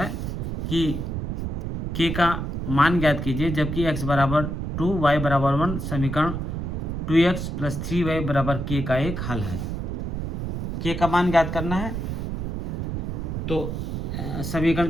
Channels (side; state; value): right; noise; rumble, 3 dB below the sound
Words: कि के का मान ज्ञात कीजिए जबकि x बराबर 2 y बराबर 1 समीकरण 2x + 3y बराबर k का एक हल है। के का मान ज्ञात करना है, तो समीकरण